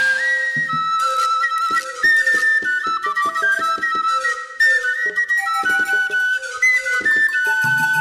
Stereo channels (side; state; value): both; identical; correlation 1.00